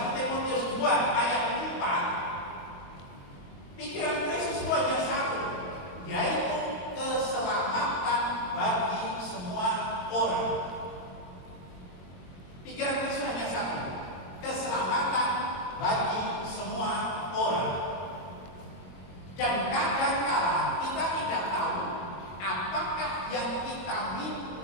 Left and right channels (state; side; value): late; right; 21 ms